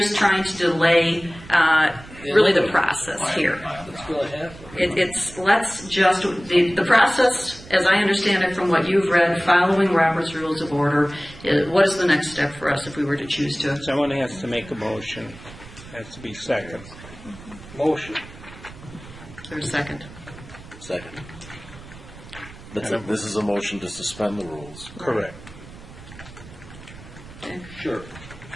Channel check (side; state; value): right; noise; rumble, 18 dB below the sound